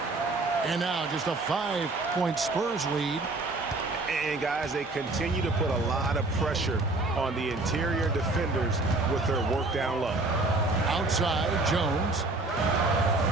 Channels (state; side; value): quieter; left; 3.1 dB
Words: And now just a 5-point Spurs lead. And guys, they continue to put a lot of pressure on the interior defenders with their work down low. Outside, Jones.